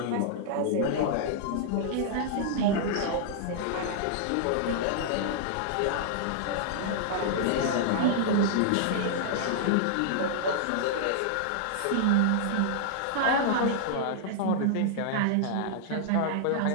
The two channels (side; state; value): both; different; correlation -0.01